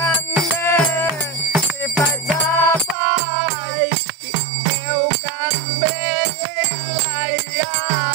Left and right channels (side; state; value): left; drops out; at 3.0 s